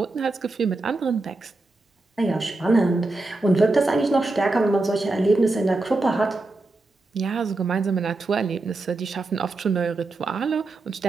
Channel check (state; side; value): quieter; left; 3.1 dB